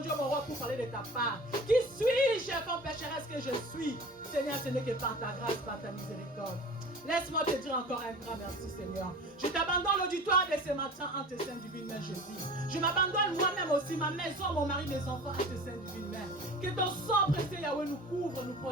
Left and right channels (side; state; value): both; normal; correlation 0.38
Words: mon roi, pour parler de ta part? Qui suis-je, comme pécheresse que je suis? Seigneur, ce n'est que par ta grâce, par ta miséricorde. Laisse-moi te dire encore un grand merci, Seigneur. Je t'abandonne l'auditoire de ce matin en tes saintes divines mains, Jésus. Je m'abandonne moi-même aussi, ma maison, mon mari, mes enfants, en tes saintes divines mains. Que ton sang précieux, Yahweh, nous couvre, nous